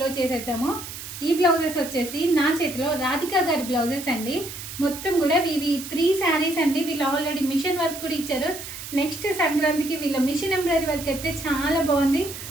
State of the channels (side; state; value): right; noise; hiss, 10 dB below the sound